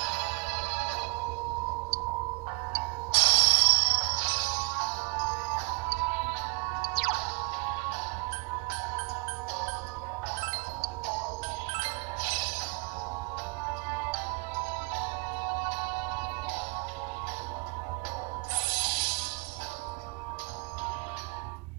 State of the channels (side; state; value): left; quieter; 30.5 dB